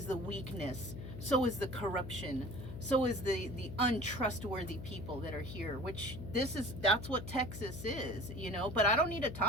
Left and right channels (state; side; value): noise; left; hum, 9 dB below the sound